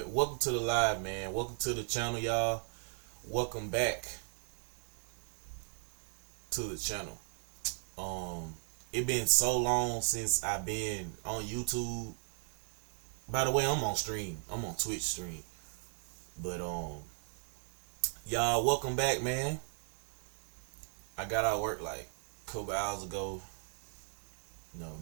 welcome to the live, man. Welcome to the channel, y'all. Welcome back to the channel. It been so long since I've been on YouTube. By the way, I'm on stream. I'm on Twitch stream. But y'all, welcome back, man. I got out of work like a couple hours ago.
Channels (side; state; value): left; silent; 53 dB below the other